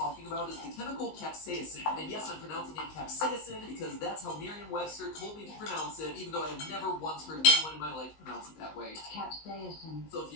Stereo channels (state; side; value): late; right; 19 ms